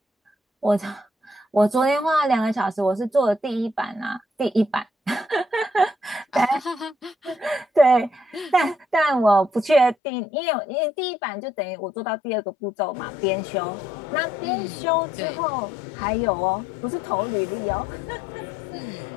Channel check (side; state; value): right; drops out; at 10.0 s